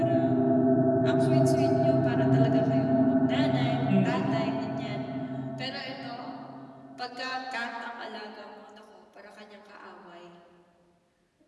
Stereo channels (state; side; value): identical; both; correlation 1.00